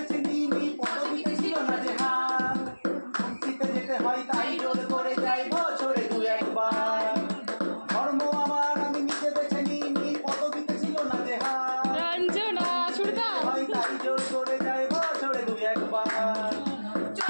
নিইনি, পদবিতে ছিল না যে হার। শান্তিতে যেতে হয় তাই জোর করে যাই বছরে দু একবার। ধর্ম আমার আমি নিজে বেছে নিইনি, পদবিতে ছিল না যে হার। রঞ্জনা সুরদা হয় তাই জোর করে যাই বছরে দু একবার।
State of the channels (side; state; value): both; inverted; correlation -1.00